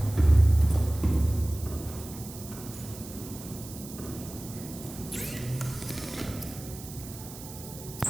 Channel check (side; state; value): right; noise; hiss, 14 dB below the sound